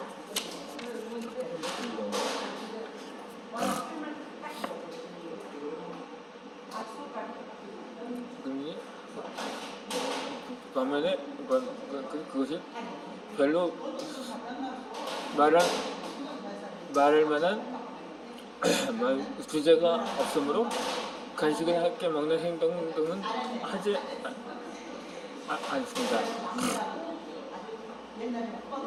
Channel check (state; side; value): identical; both; correlation 1.00